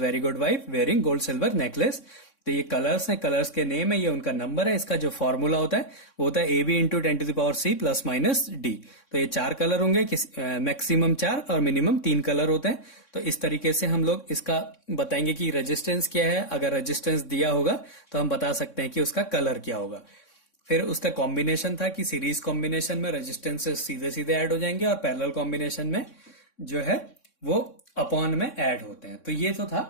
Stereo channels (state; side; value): late; right; 3.6 ms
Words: very good wife wearing gold silver necklace. तो ये कलर्स हैं, कलर्स के नेम है, ये उनका नंबर है। इसका जो फॉर्मूला होता है वो होता है AB into 10⁻⁶ plus minus D। तो ये 4 कलर होंगे, मैक्सिमम 4 और मिनिमम 3 कलर होते हैं। तो इस तरीके से हम लोग इसका बताएंगे कि रेजिस्टेंस क्या है। अगर रेजिस्टेंस दिया होगा तो हम बता सकते हैं कि उसका कलर क्या होगा। फिर उसका कॉम्बिनेशन था कि सीरीज कॉम्बिनेशन में रेजिस्टेंसेस सीधे सीधे ऐड हो जाएंगे और पैरेलल कॉम्बिनेशन में जो है वो अपॉन में ऐड होते हैं। तो ये तो था